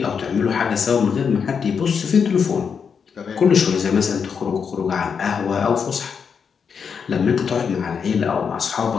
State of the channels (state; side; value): quieter; right; 6.4 dB